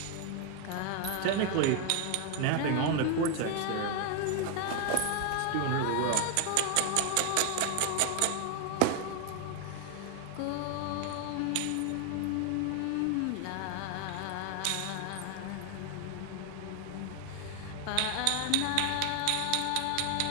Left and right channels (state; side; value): different; both; correlation 0.01